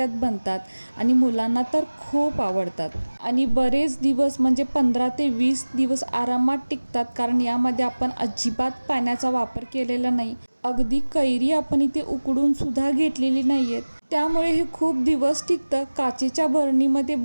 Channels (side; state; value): both; inverted; correlation -1.00